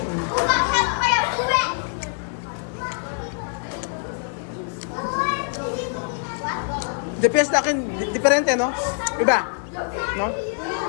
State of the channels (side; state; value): right; silent; 63 dB below the other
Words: Depende sa akin, diferente, no? Iba, no?